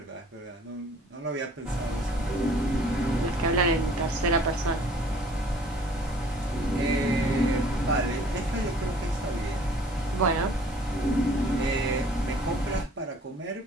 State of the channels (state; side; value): normal; both; correlation 0.54